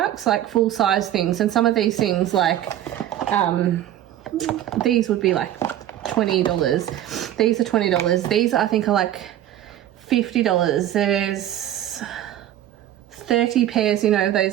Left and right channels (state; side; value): quieter; left; 12.2 dB